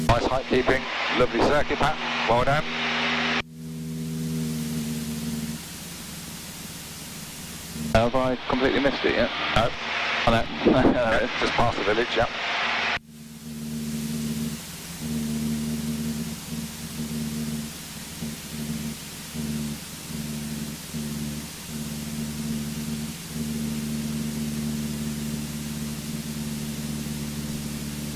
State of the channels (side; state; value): both; identical; correlation 1.00